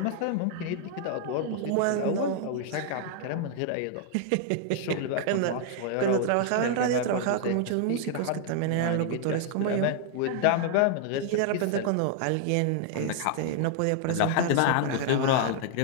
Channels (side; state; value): both; different; correlation 0.00